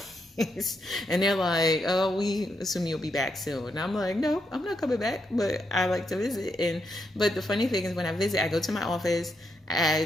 And they're like, oh, we assume you'll be back soon. And I'm like, no, I'm not coming back, but I like to visit. But the funny thing is, when I visit, I go to my office,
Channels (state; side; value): normal; both; correlation 0.80